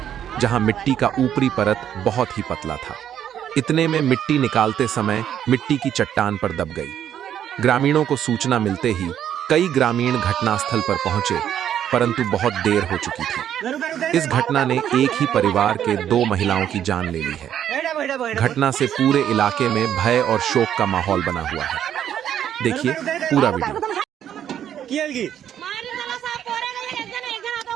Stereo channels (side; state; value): left; quieter; 10.0 dB